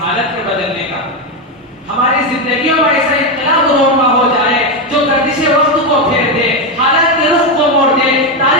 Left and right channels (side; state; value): both; normal; correlation 0.09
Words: حالت کے بدلنے کا۔ ہماری زندگیوں میں ایسا انقلاب رونما ہو جائے جو گردش وقت کو پھیر دے، حالت کے رخ کو موڑ دے،